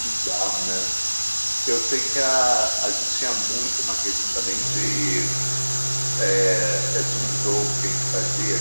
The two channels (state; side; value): inverted; both; correlation -1.00